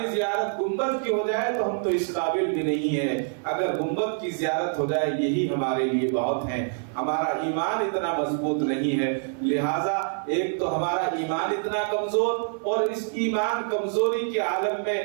زیارت گنبد کی ہو جائے، تو ہم تو اس قابل بھی نہیں ہے۔ اگر گنبد کی زیارت ہو جائے یہی ہمارے لیے بہت ہے۔ ہمارا ایمان اتنا مضبوط نہیں ہے، لہٰذا ایک تو ہمارا ایمان اتنا کمزور، اور اس ایمان کمزوری کے عالم میں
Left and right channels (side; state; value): left; silent; 61 dB below the other